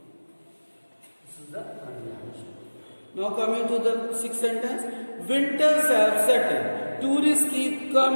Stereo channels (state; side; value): inverted; both; correlation -1.00